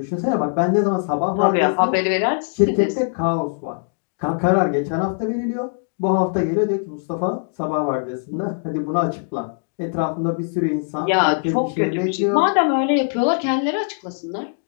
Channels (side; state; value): right; silent; 65 dB below the other